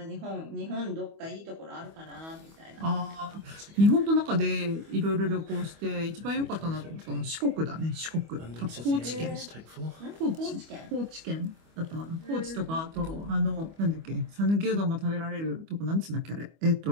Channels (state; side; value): late; left; 25 ms